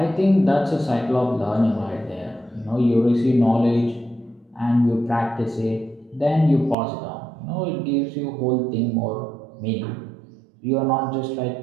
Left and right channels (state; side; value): drops out; left; at 6.8 s